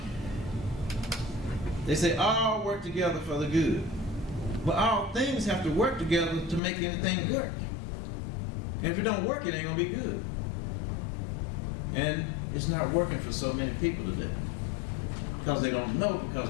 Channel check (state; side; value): drops out; right; at 6.6 s